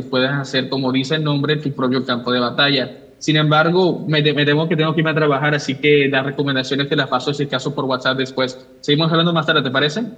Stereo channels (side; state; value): both; identical; correlation 1.00